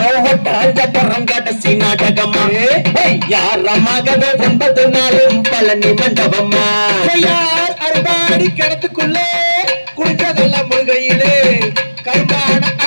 ஒட்டாஞ்சரங்காட்ட நாடகம்மா யாரமாகவே 9 நாளும் பழனி மண்டபம்மா அறுபாடி கிணத்துக்குள்ளே குடிச்சதெல்லாம் முழுகையிலே கருப்பான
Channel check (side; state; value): both; inverted; correlation -1.00